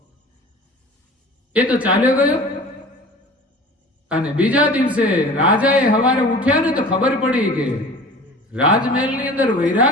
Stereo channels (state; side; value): normal; both; correlation 0.41